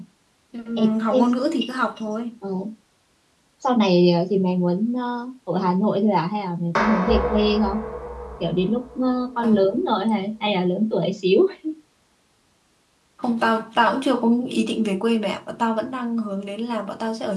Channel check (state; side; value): identical; both; correlation 1.00